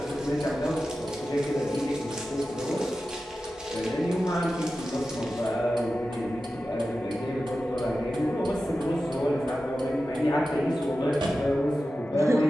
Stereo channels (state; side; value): normal; both; correlation 0.93